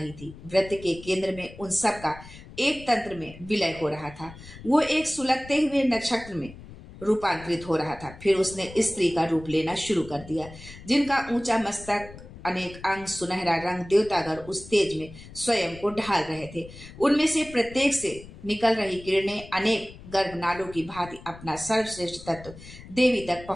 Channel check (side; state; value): left; noise; rumble, 17 dB below the sound